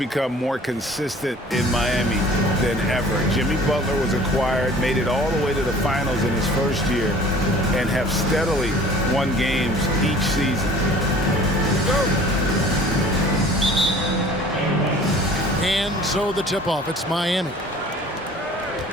more consistent in Miami than ever. Jimmy Butler was acquired, made it all the way to the finals in his first year, and have steadily won games each season. And so the tip-off, it's Miami.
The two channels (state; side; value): normal; both; correlation 0.48